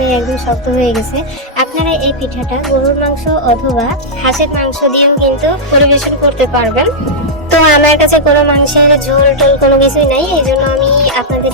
একদম শক্ত হয়ে গেছে। আপনারা এই পিঠাটা গরুর মাংস অথবা হাঁসের মাংস দিয়েও কিন্তু পরিবেশন করতে পারবেন। তো আমার কাছে কোনো মাংসের ঝোল টোল কোনো কিছুই নাই, এই জন্য আমি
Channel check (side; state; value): both; normal; correlation -0.08